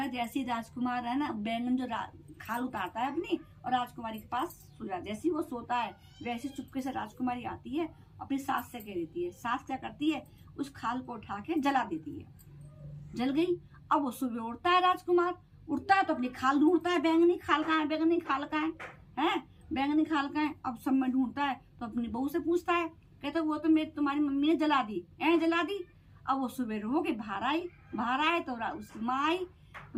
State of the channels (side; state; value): both; identical; correlation 1.00